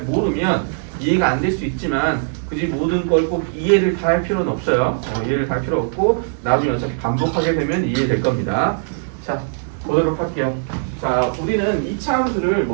모르면 이해가 안 될 수 있지만 굳이 모든 걸 꼭 이해를 다 할 필요는 없어요. 이해를 다 할 필요 없고 나중에 어차피 반복하게 되면 이해될 겁니다. 자, 보도록 할게요. 자, 우리는 2차 함수를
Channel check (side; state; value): left; silent; digital silence